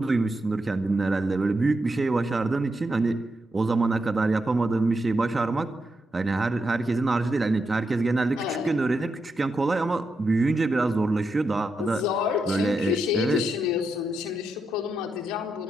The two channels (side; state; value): both; normal; correlation 0.84